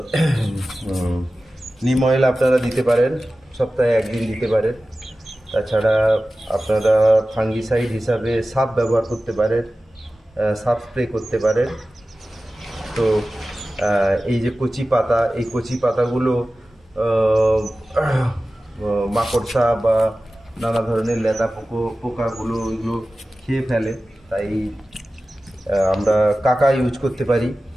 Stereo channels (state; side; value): normal; both; correlation 0.95